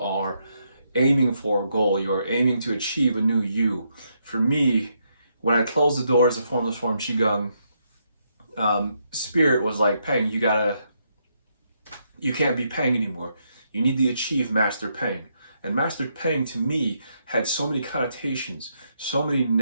aiming for a goal. You are aiming to achieve a new you. For me, when I closed the doors of Formless Form Qigong, Spirit was like, Peng, you can't be Peng anymore. You need to achieve Master Peng. And Master Peng to me had so many connotations, so many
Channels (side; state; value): both; inverted; correlation -0.78